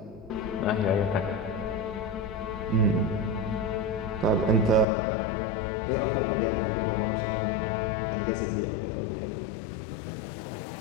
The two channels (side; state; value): right; drops out; at 4.9 s